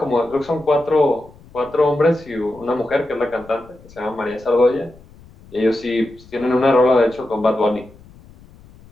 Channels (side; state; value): left; noise; rumble, 24 dB below the sound